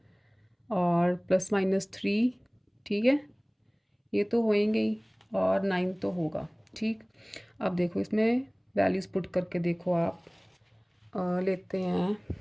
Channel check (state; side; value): identical; both; correlation 1.00